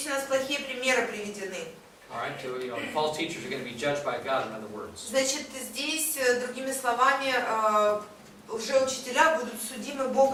у нас плохие примеры приведены. All right, so false teachers are going to be judged by God, in other words. Значит, здесь, другими словами, лжеучителя будут судимы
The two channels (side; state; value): both; identical; correlation 1.00